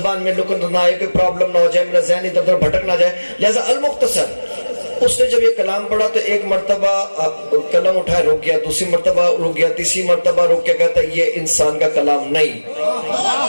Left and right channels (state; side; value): inverted; both; correlation -1.00